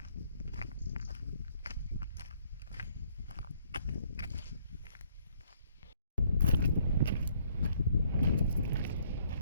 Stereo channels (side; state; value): both; inverted; correlation -0.66